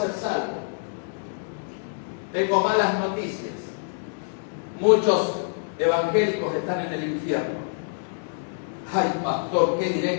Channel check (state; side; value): silent; right; 61 dB below the other